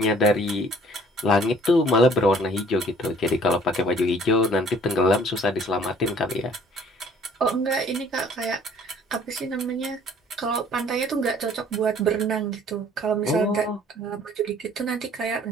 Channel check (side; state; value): both; normal; correlation 0.55